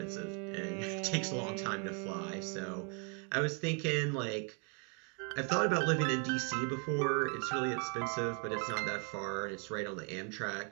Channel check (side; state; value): left; quieter; 37.3 dB